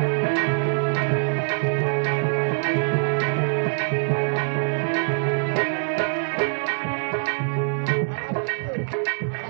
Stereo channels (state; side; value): silent; left; 63 dB below the other